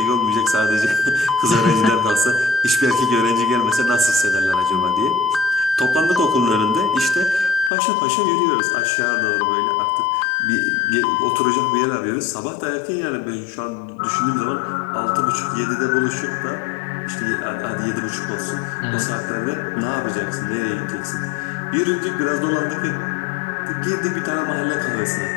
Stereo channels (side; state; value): right; drops out; at 7.7 s